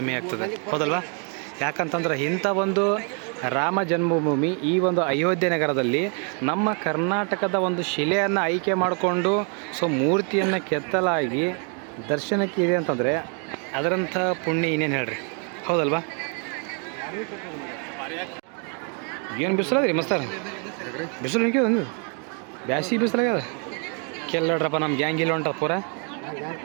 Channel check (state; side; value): quieter; left; 39.3 dB